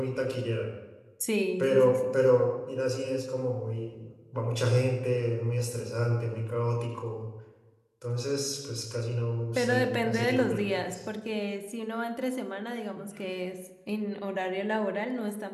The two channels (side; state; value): both; identical; correlation 1.00